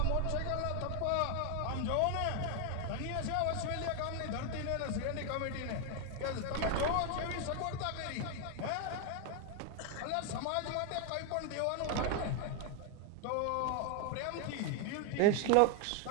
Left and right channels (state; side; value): different; both; correlation 0.01